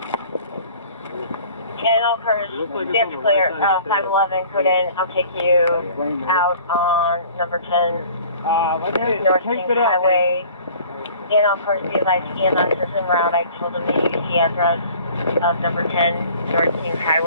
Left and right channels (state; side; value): inverted; both; correlation -0.49